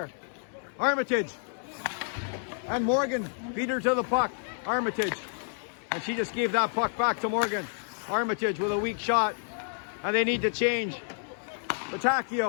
Armitage and Morgan beat her to the puck. Armitage, and she just gave that puck back to Morgan. Armitage with a weak shot, and they need to change.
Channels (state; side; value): silent; right; digital silence